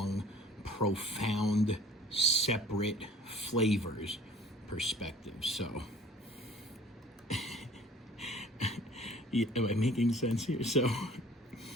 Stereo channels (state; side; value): normal; both; correlation 0.49